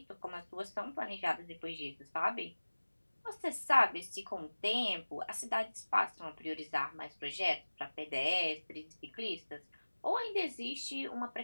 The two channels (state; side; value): inverted; both; correlation -1.00